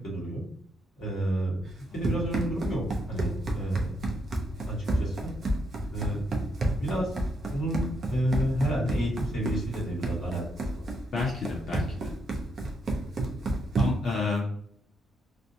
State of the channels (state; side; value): normal; both; correlation 0.77